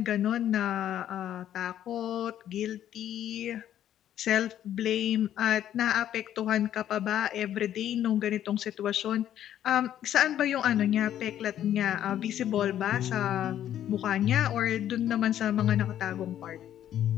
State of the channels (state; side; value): quieter; right; 11.1 dB